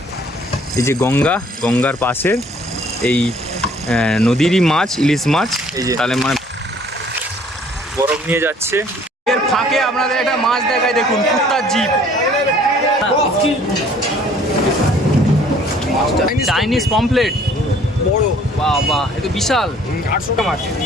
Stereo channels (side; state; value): both; normal; correlation 0.57